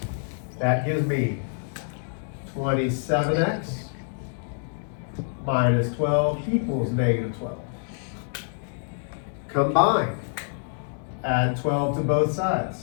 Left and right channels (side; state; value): right; silent; digital silence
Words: That gives me 27x minus 12 equals -12. Combine. Add 12 to both sides.